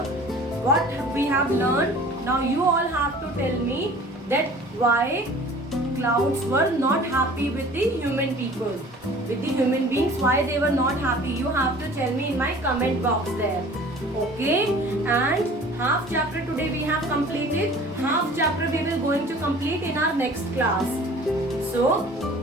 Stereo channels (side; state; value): both; normal; correlation 0.46